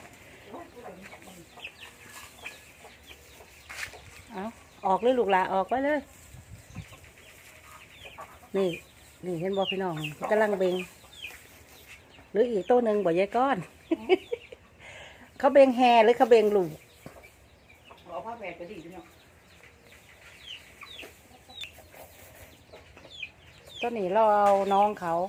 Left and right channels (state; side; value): identical; both; correlation 1.00